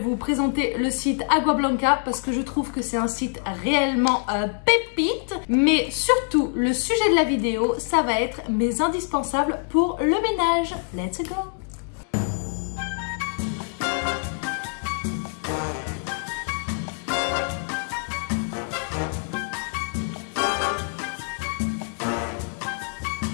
présenter le site Agua Blanca parce que je trouve que c'est un site réellement pépite. Mais surtout le sujet de la vidéo ça va être mes indispensables pour le ménage. Let's go.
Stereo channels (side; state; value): right; silent; 62 dB below the other